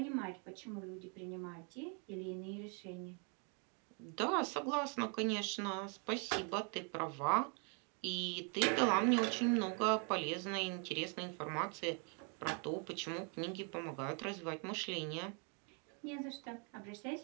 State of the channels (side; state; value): left; quieter; 37.5 dB